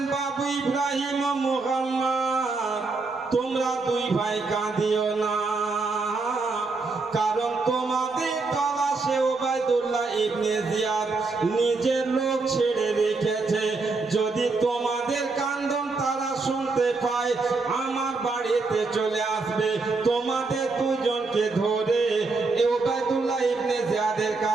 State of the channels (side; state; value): left; quieter; 3.9 dB